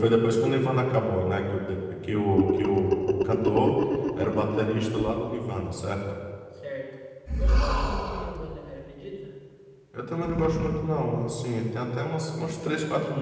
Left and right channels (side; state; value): both; identical; correlation 1.00